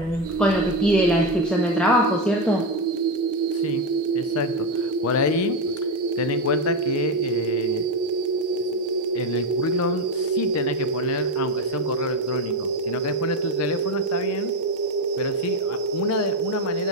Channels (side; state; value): both; normal; correlation 0.12